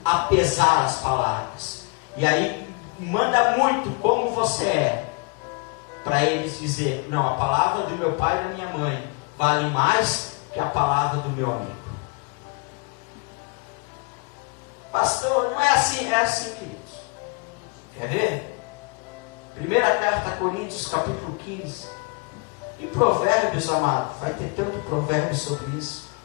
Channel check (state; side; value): quieter; right; 31.9 dB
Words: a pesar as palavras, e aí manda muito como você é, para eles dizer, não, a palavra do meu pai e da minha mãe vale mais que a palavra do meu amigo. Pastor, não é assim, é assim, queridos. Quer ver? Primeira carta a Coríntios, capítulo 15. Em Provérbios, amado, vai ter tanto provérbio sobre isso.